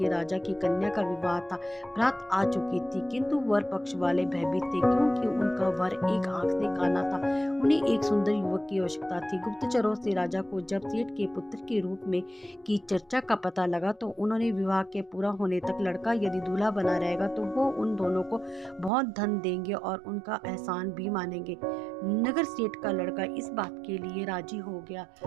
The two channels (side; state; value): left; drops out; at 18.9 s